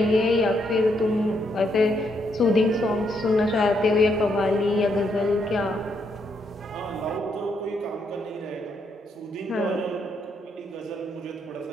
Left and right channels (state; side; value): normal; both; correlation 0.76